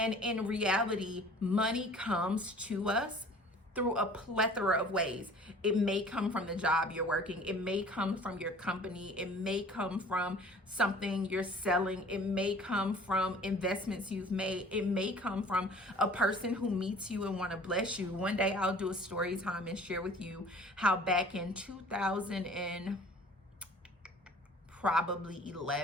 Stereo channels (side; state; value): both; normal; correlation 0.48